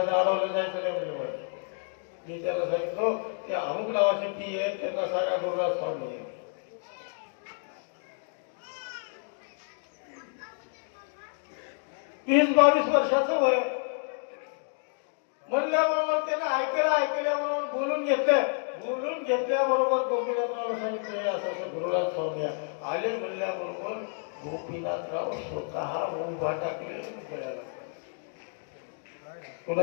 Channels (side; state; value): right; silent; 58 dB below the other